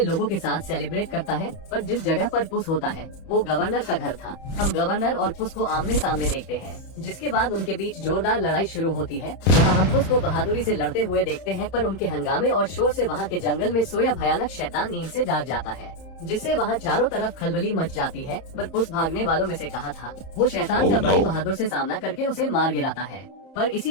लोगों के साथ सेलिब्रेट करता है, पर जिस जगह पर पुस होता है वो गवर्नर का घर था। हम गवर्नर और पुस को आमने सामने देखते हैं, जिसके बाद उनके बीच जोरदार लड़ाई शुरू होती है। जहाँ हम पुस को बहादुरी से लड़ते हुए देखते हैं, पर उनके हंगामे और शोर से वहाँ के जंगल में सोया भयानक शैतान नींद से जाग जाता है, जिससे वहाँ चारों तरफ खलबली मच जाती है। पर पुस भागने वालों में से कहा था, वो शैतान का बड़ी बहादुर से सामना करके उसे मार गिराता है। पर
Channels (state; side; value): late; right; 31 ms